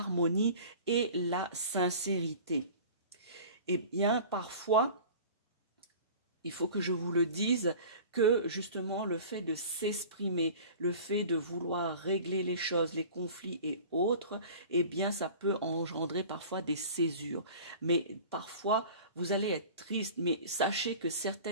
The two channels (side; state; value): both; inverted; correlation -0.42